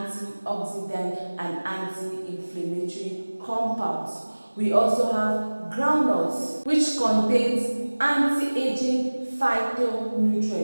and anti-inflammatory compounds. We also have groundnuts, which contains anti-aging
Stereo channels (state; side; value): inverted; both; correlation -1.00